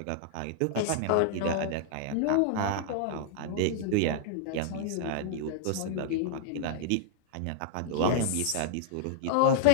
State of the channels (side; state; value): both; different; correlation -0.01